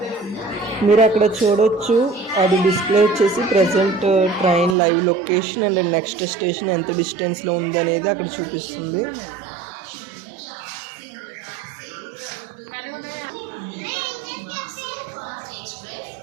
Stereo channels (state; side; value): drops out; left; at 4.8 s